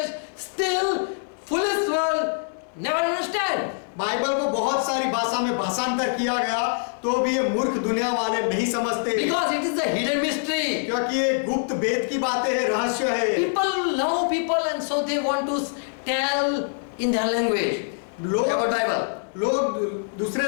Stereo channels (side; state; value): right; silent; digital silence